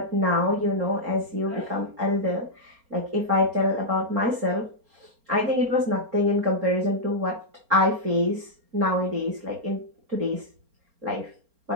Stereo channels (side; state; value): left; late; 4.3 ms